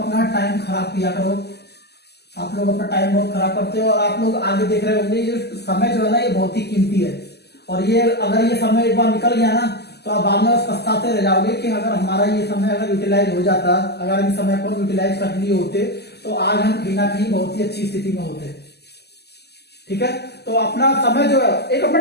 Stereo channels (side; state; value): right; late; 0.48 ms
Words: टाइम खराब किया करो। आप लोग अपना टाइम बहुत खराब करते हो और आप लोग आगे देख रहे होंगे ये समय जो है ना ये बहुत ही कीमती है, और ये अगर ये समय एक बार निकल गया ना तो आप बाद में बस पछताते रह जाओगे कि अगर हमारा ये समय अगर यूटिलाइज हो जाता, अगर इन समय को यूटिलाइज कर लिए होते तो आज हम कहीं ना कहीं बहुत ही अच्छी स्थिति में होते, ठीक है। तो अपना समय जो है एक अपना